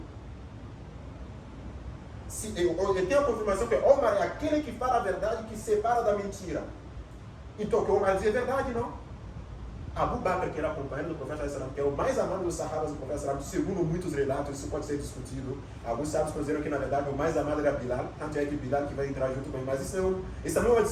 eu tenho a confirmação que Omar é aquele que fala a verdade, que separa da mentira. Então, o que Omar diz é verdade, não? Abu Bakr, que era companheiro do profeta sallallahu alaihi wasallam, que é o mais amado dos sahabas do profeta sallallahu alaihi wasallam, segundo muitos relatos, isso pode ser discutido. Alguns sábios consideram que, na verdade, o mais amado era Bilal, tanto é que Bilal que vai entrar junto com ele, mas isso não é uma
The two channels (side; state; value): both; identical; correlation 1.00